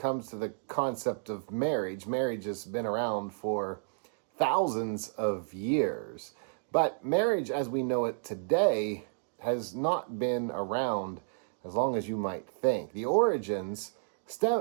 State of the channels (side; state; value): left; silent; digital silence